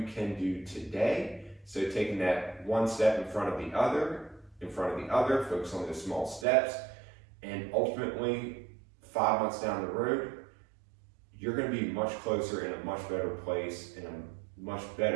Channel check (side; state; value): left; drops out; at 6.5 s